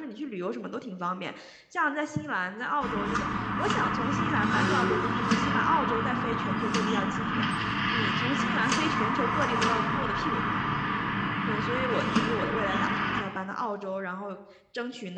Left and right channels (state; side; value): identical; both; correlation 1.00